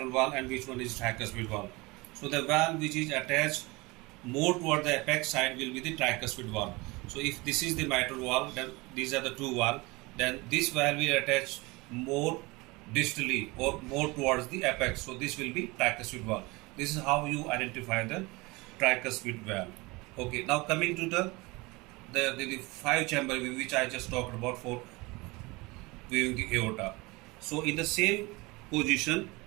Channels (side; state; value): left; quieter; 23.9 dB